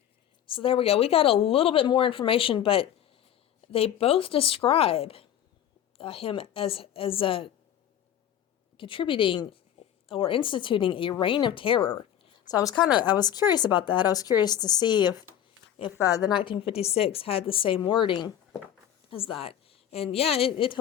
So there we go. We got a little bit more information, but they both describe him as contributing or instituting a reign of terror. So I was curious about that. I was curious to see if the 1956 had the same wording as that. And yeah, it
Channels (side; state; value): right; quieter; 10.4 dB